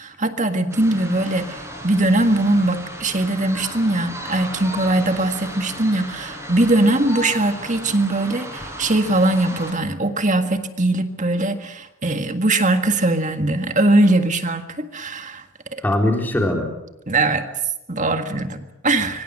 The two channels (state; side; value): normal; both; correlation 0.62